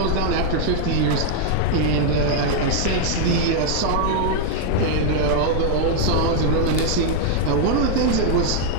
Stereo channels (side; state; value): both; different; correlation 0.00